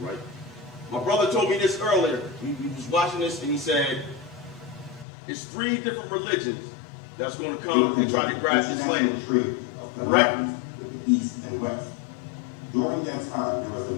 My brother told me this earlier. He was watching this and he said, it's 3 different religions that's going to come and try to grab this land. Trade of Right. commodities with the East and West. During that time, there was a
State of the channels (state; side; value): drops out; right; at 5.1 s